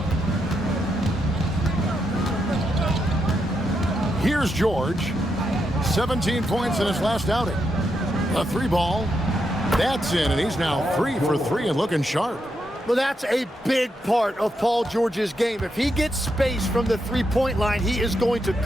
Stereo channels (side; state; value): both; normal; correlation 0.82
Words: Here's George. 17 points in his last outing. A 3-ball. That's in, and he's now 3 for 3 and looking sharp. Well, that's a big part of Paul George's game. If he gets space from the three-point line, he is going to